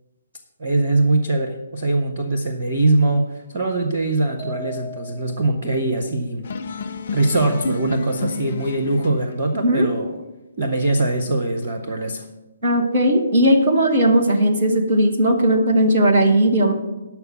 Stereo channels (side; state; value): both; inverted; correlation -0.72